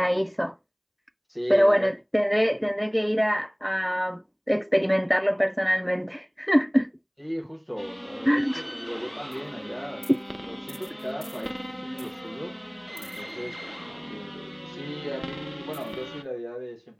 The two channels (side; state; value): both; identical; correlation 1.00